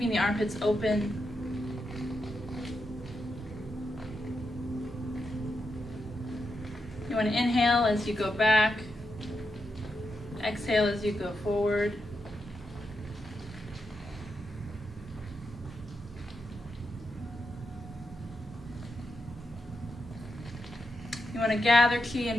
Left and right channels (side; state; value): both; normal; correlation 0.85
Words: the armpits open. You want to inhale as you go back. Exhale as you go forward. You want to gather chi